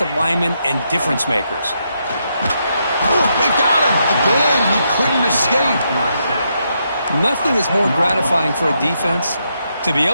linemen and difference makers. They got him. Again, he couldn't escape. Nothing is more gratifying for a defense to be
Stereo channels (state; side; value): inverted; both; correlation -0.80